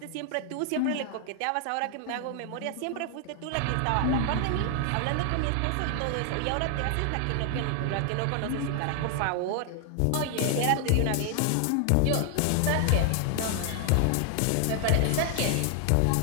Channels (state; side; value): different; both; correlation 0.00